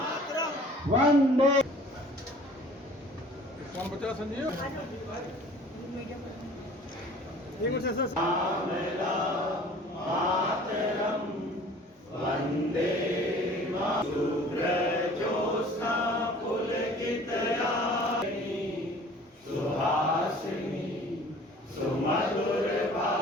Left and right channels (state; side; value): normal; both; correlation 0.48